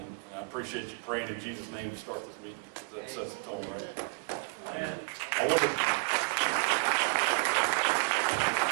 I appreciate you praying in Jesus' name to start this meeting, because that sets the tone, right?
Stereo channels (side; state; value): left; quieter; 35.5 dB